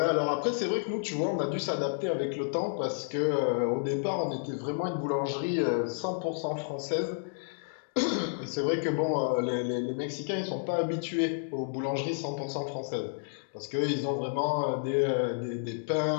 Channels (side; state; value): right; silent; digital silence